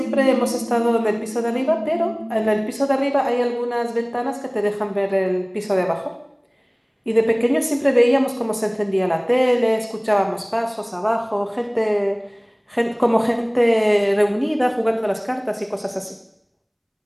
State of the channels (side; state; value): both; identical; correlation 1.00